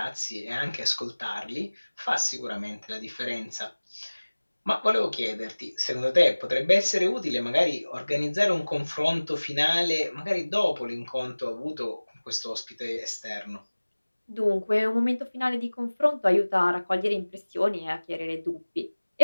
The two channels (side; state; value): both; inverted; correlation -1.00